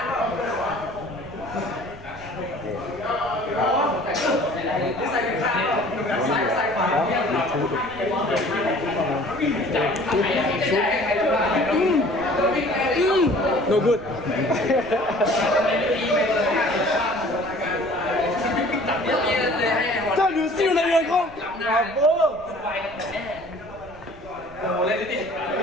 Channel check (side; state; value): right; noise; rumble, 22 dB below the sound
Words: No good. Putain, lui aussi, on a eu un grand. Bravo.